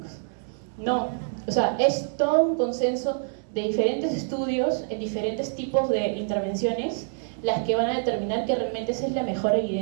No, o sea, es todo un consenso de diferentes estudios en diferentes tipos de intervenciones las que van a determinar que realmente esa es la mejor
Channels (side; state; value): left; silent; 61 dB below the other